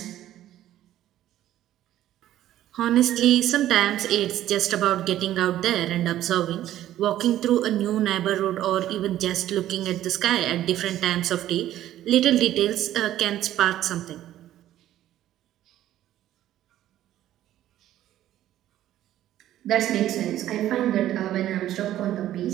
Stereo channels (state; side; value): quieter; left; 12.9 dB